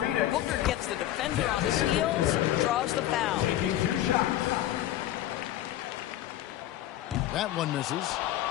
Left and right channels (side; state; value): right; quieter; 13.3 dB